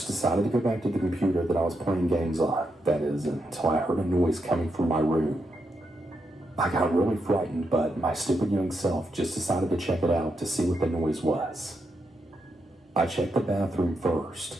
decided to go back to the computer that I was playing games on, that is, until I heard a noise coming from my room. I got really frightened, but my stupid young self just decided to check it out to see what the noise was. I checked the bathroom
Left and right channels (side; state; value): both; normal; correlation 0.83